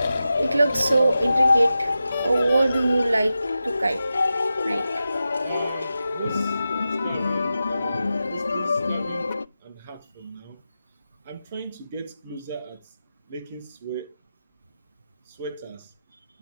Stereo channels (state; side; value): inverted; both; correlation -0.92